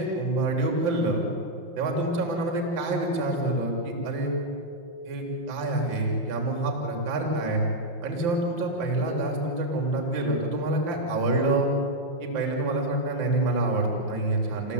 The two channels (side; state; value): left; late; 5.9 ms